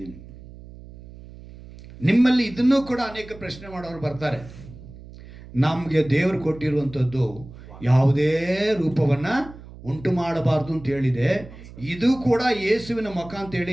ನಿಮ್ಮಲ್ಲಿ ಇದನ್ನೂ ಕೂಡ ಅನೇಕ ಪ್ರಶ್ನೆ ಮಾಡೋರು ಬರ್ತಾರೆ. ನಮಗೆ ದೇವರು ಕೊಟ್ಟಿರುವಂಥದ್ದು ಯಾವುದೇ ರೂಪವನ್ನು ಉಂಟು ಮಾಡಬಾರ್ದು ಅಂತ ಹೇಳಿದೆ. ಇದು ಕೂಡ ಯೇಸುವಿನ ಮುಖ ಅಂತೇಳಿ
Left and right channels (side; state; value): right; noise; hum, 17 dB below the sound